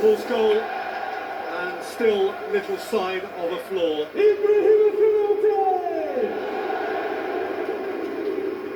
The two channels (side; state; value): both; identical; correlation 1.00